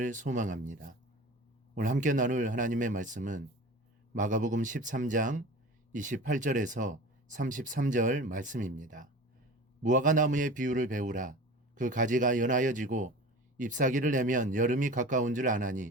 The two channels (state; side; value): normal; both; correlation 0.36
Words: 소망합니다. 오늘 함께 나눌 하나님의 말씀은 마가복음 13장 28절에서 33절 말씀입니다. 무화과 나무의 비유를 배우라. 그 가지가 연하여지고 잎사귀를 내면 여름이 가까운 줄